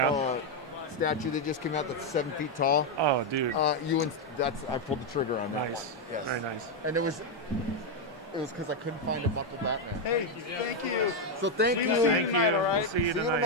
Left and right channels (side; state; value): both; normal; correlation 0.03